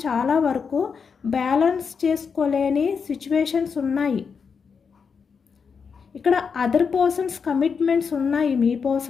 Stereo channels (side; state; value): right; quieter; 5.9 dB